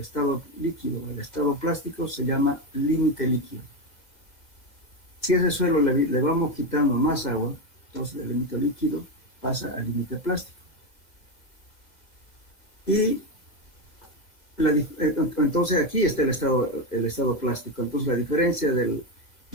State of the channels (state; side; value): late; right; 1.9 ms